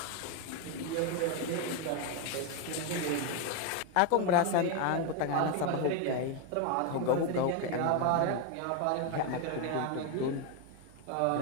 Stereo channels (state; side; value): different; both; correlation 0.01